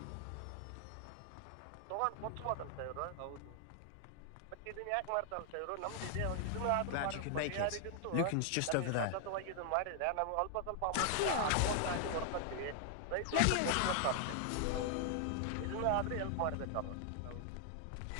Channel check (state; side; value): different; both; correlation 0.00